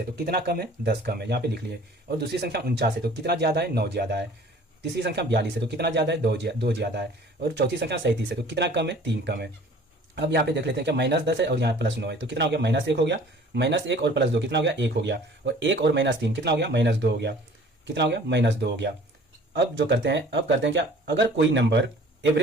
तो कितना कम है 10 कम है, यहाँ पे लिख लिए। और दूसरी संख्या 49 है तो कितना ज़्यादा है 9 ज़्यादा है। तीसरी संख्या 42 है तो कितना ज़्यादा है 2 ज़्यादा है। और चौथी संख्या 37 है तो कितना कम है 3 कम है। अब यहाँ पे देख लेते हैं क्या -10 है और यहाँ +9 है तो कितना हो गया -1 हो गया, -1 और +2 कितना हो गया 1 हो गया। और 1 और -3 कितना हो गया -2 हो गया, कितना हो गया -2 हो गया। अब जो करते हैं, अब करते हैं क्या, अगर कोई नंबर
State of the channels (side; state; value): both; normal; correlation 0.49